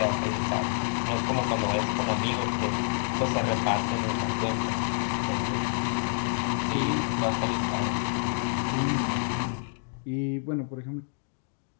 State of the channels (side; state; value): right; silent; digital silence